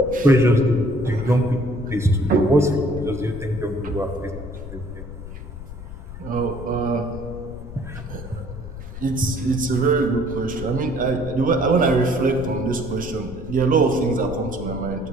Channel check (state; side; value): noise; left; rumble, 12 dB below the sound